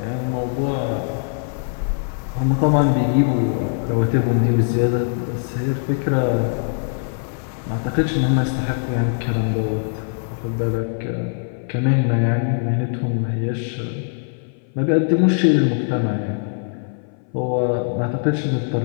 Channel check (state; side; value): silent; right; 59 dB below the other